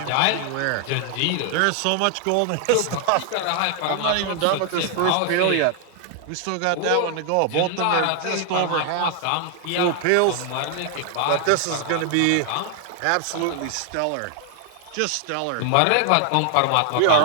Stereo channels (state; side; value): different; both; correlation 0.00